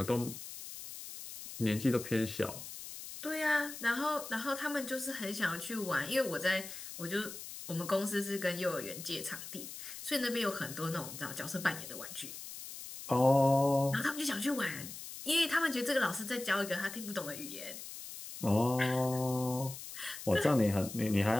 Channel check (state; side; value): noise; left; hiss, 11 dB below the sound